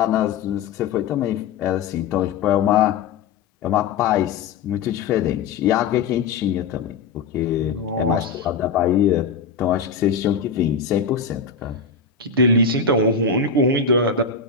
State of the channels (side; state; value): right; quieter; 5.4 dB